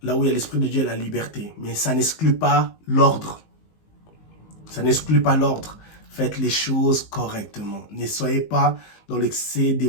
Là où il y a l'Esprit de Dieu, il y a la liberté. Mais ça n'exclut pas l'ordre. Ça n'exclut pas l'ordre. Faites les choses correctement. Ne soyez pas dans l'excès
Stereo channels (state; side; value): late; right; 19 ms